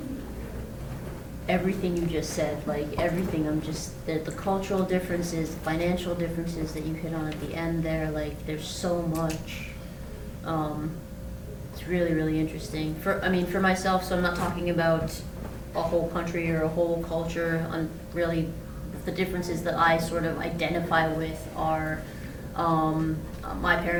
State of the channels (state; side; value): identical; both; correlation 1.00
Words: everything you just said, like everything. I'm just, the cultural differences, financial differences that you hit on at the end there, like there's so much. It's It's really, really interesting. For myself, so I'm not talking about a whole country or a whole culture. On really, the differences that I sort of identify with are, my